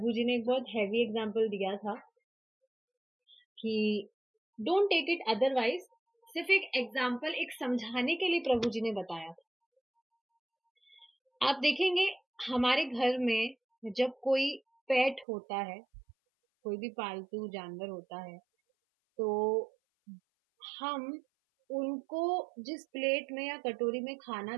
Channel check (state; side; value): drops out; left; at 15.2 s